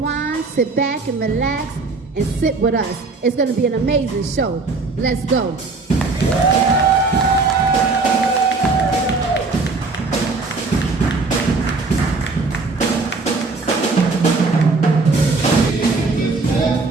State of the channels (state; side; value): quieter; left; 3.9 dB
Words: sit back and relax, and sit with us. It's going to be an amazing show. Let's go.